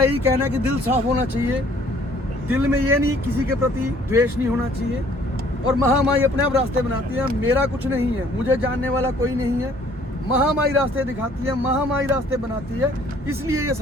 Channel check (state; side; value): normal; both; correlation 0.58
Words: यही कहना है कि दिल साफ होना चाहिए, दिल में ये नहीं, किसी के प्रति द्वेष नहीं होना चाहिए। और महामाई अपने आप रास्ते बनाती है, मेरा कुछ नहीं है, मुझे जानने वाला कोई नहीं है। महामाई रास्ते दिखाती है, महामाई रास्ते बनाती है, इसलिए ये